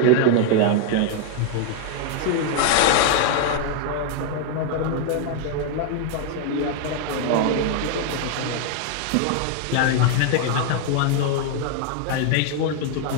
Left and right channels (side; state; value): both; different; correlation 0.00